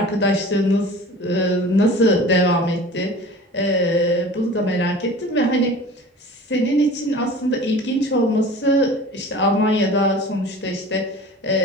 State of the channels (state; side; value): normal; both; correlation 0.40